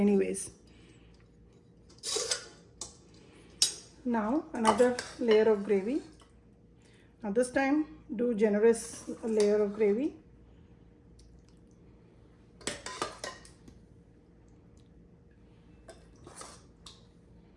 Now another layer of gravy. Now this time do generous layer of gravy.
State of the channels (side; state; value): both; identical; correlation 1.00